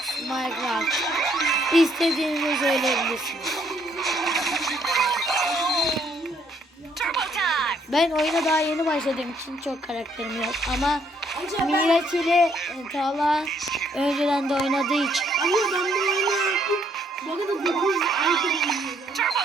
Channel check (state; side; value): normal; both; correlation 0.68